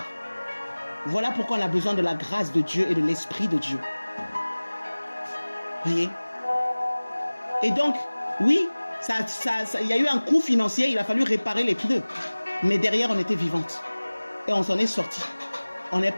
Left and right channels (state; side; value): inverted; both; correlation -1.00